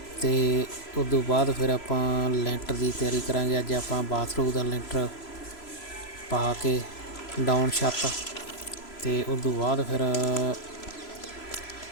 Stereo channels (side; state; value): right; late; 3.0 ms